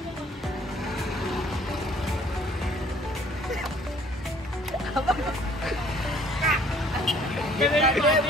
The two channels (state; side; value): normal; both; correlation 0.57